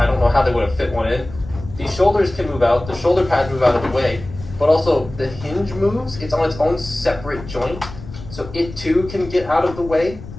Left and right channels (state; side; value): noise; left; rumble, 14 dB below the sound